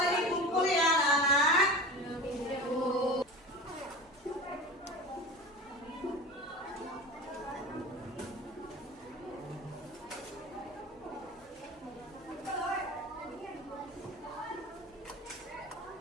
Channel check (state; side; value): normal; both; correlation 0.31